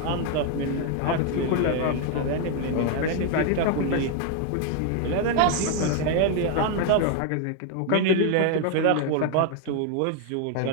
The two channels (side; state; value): both; different; correlation 0.00